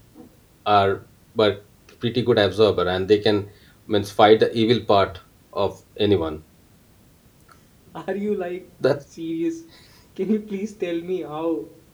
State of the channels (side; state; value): both; identical; correlation 1.00